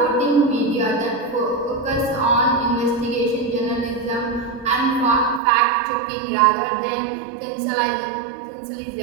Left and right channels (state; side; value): drops out; left; at 5.4 s